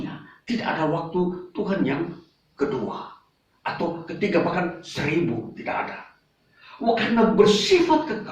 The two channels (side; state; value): both; identical; correlation 1.00